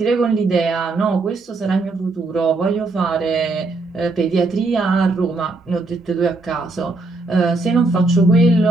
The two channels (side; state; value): left; quieter; 3.4 dB